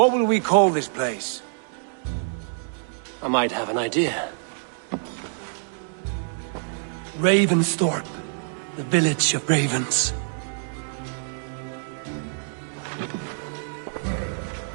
will we call this place? I might have an idea. Ravensthorpe. The village of ravens.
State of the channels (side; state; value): left; silent; digital silence